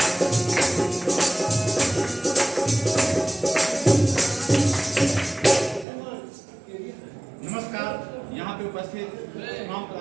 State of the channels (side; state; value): left; drops out; at 5.9 s